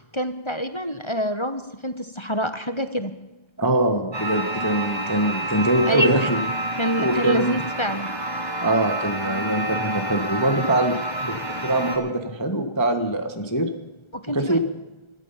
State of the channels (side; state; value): right; late; 1.3 ms